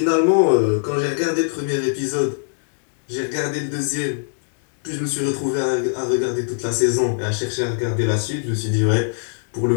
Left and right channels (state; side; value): silent; right; digital silence